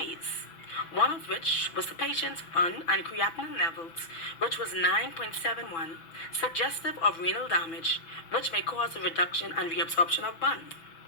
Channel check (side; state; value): right; late; 6.1 ms